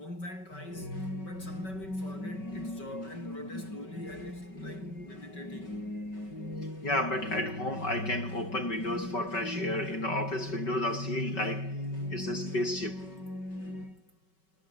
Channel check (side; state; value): right; late; 5.3 ms